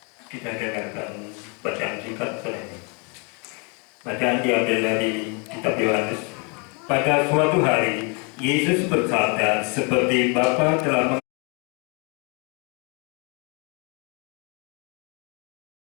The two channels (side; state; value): right; quieter; 33.7 dB